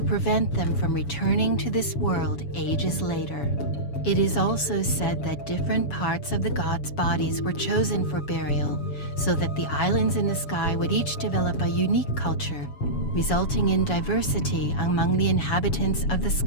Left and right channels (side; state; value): right; late; 7.1 ms